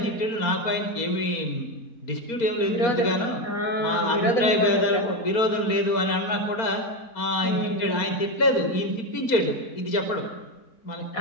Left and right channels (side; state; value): right; late; 4.3 ms